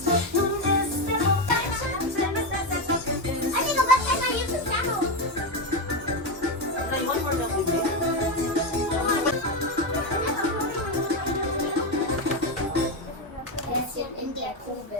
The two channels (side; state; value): both; normal; correlation 0.11